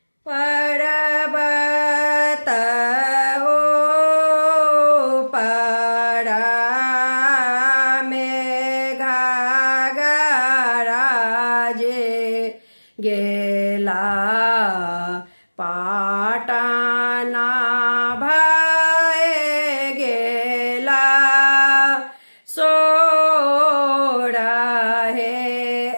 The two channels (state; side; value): inverted; both; correlation -1.00